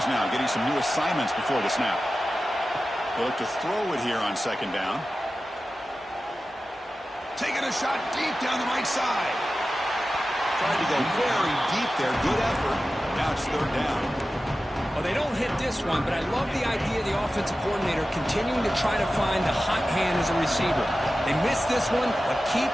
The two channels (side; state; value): both; normal; correlation 0.94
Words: now getting some new assignments before the snap. They'll look to throw it here on second down. Taking a shot deep down the right side. Tried to go very deep there. Good effort. Now it's third down. Well, they don't hit this one, but I love the idea of the offensive coordinator continuing to try to find the hot hand as a receiver. They missed this one, but keep